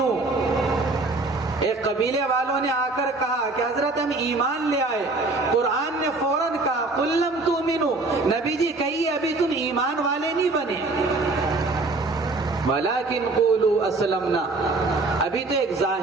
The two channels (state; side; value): quieter; left; 3.3 dB